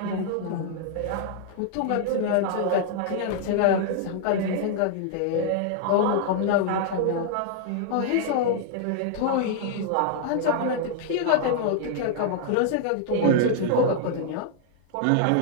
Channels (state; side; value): different; both; correlation 0.00